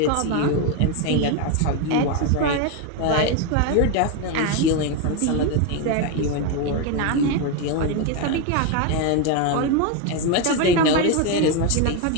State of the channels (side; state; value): both; different; correlation 0.02